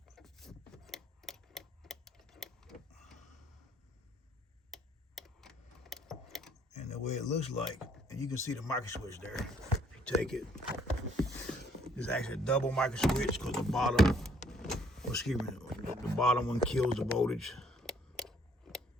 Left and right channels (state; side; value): normal; both; correlation 0.63